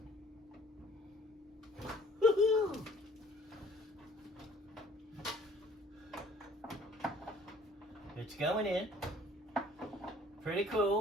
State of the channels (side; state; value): both; normal; correlation 0.55